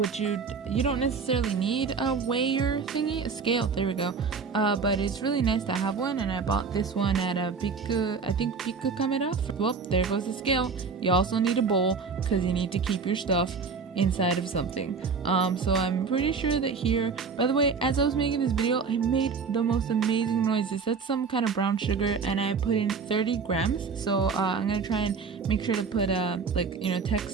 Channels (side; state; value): left; quieter; 5.2 dB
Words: you don't necessarily need a weigher thingy, a scale, there we go, but it's really nice to have one, and I bought this one at a Biku Camera. Well, there goes the scale. You also need a bowl, because you need to keep your stuff inside of something. So I'm pretty sure that here, by the way, as I was making this video, I made the most amazing noises. That's some kind of brown sugar, and I put in 30 grams. So I'm gonna try and make sure to put